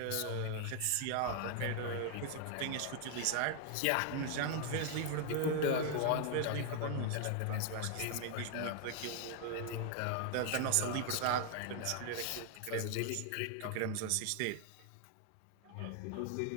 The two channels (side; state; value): both; different; correlation 0.00